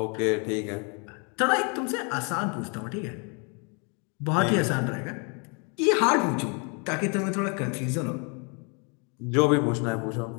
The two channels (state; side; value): quieter; right; 35.8 dB